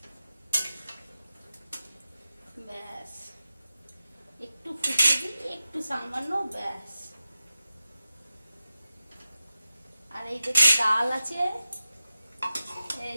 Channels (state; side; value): inverted; both; correlation -0.93